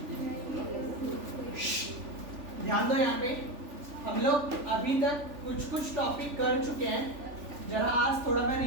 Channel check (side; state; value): left; late; 3.4 ms